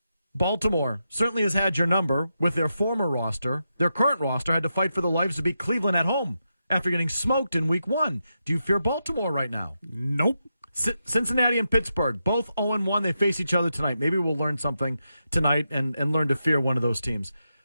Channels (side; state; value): both; inverted; correlation -0.86